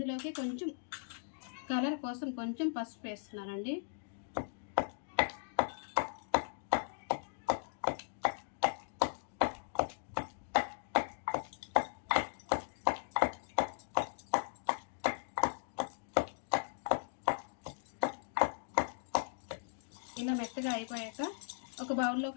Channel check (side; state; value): right; silent; digital silence